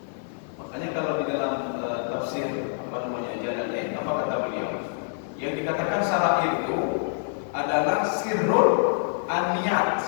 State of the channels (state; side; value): silent; right; digital silence